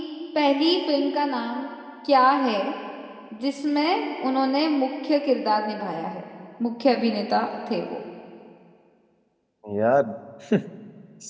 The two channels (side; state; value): both; identical; correlation 1.00